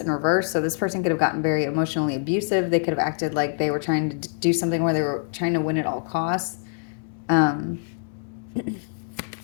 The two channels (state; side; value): silent; right; 62 dB below the other